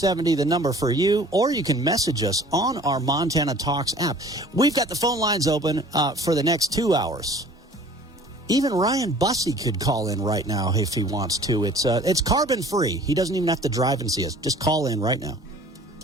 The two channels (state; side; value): normal; both; correlation 0.49